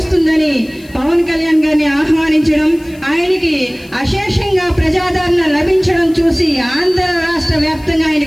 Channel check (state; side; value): noise; left; hiss, 26 dB below the sound